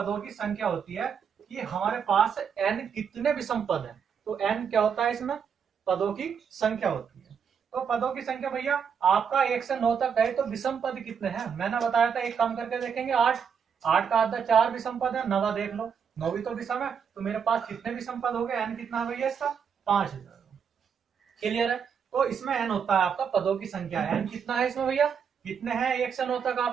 की संख्या होती है कि हमारे पास n कितने विषम पद हैं। तो n क्या होता है, इसमें पदों की संख्या होती है। तो पदों की संख्या भैया आपका 1 से 9 तक है, तो विषम पद कितने हैं मैंने बताया था, एक काम करके देखेंगे। 8 8 का आधा 4 विषम पद है, 9 देख लो, 9 भी तो विषम है। तो मेरे पास कितने विषम पद हो गए, n कितना है भैया इसका 5। क्लियर है? तो इसमें n होता है आपका पदों की संख्या। n कितना है इसमें भैया, कितने हैं 1 से 9 तक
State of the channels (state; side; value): quieter; left; 7.0 dB